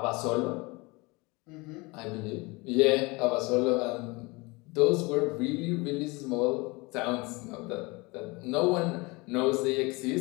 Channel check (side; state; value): right; quieter; 25.4 dB